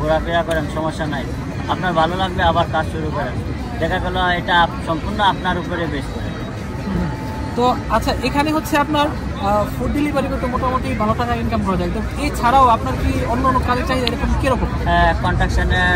করেন, সমস্যা নাই। আপনার ভালো লাগবে আবার কাজ শুরু করেন। দেখা গেল এটা সম্পূর্ণ আপনার উপরে বেস করে। তো আচ্ছা, এখানে হচ্ছে আপনার ফুড ডেলিভারি করতে মোটামুটি ভালো টাকা ইনকাম করা যায়। তো এছাড়াও আপনার কি অন্য কাজের চাহিদা এরকম কীরকম?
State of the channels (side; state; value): both; identical; correlation 1.00